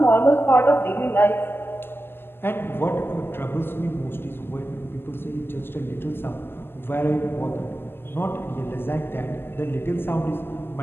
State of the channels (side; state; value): right; late; 0.11 ms